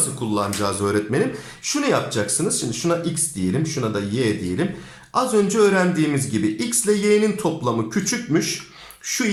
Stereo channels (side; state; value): both; identical; correlation 1.00